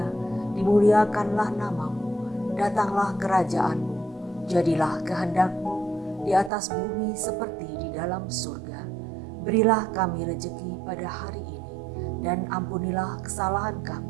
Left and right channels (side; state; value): left; drops out; at 6.5 s